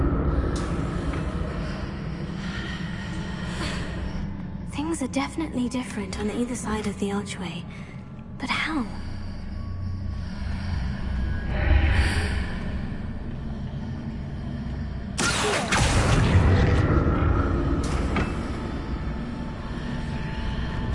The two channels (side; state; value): both; identical; correlation 1.00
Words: Things are definitely different on either side of the archway. But how?